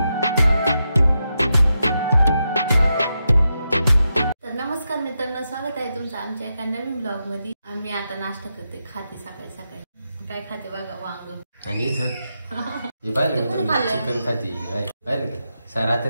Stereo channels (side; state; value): both; inverted; correlation -0.86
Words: तर नमस्कार मित्रांनो स्वागत आहे तुमचं आमच्या एका नवीन ब्लॉग मध्ये आम्ही आता नाश्ता करते खाते सकाळी सकाळी काय खाते बघा वांग आणि इथं चिकन खाते पाहिलं का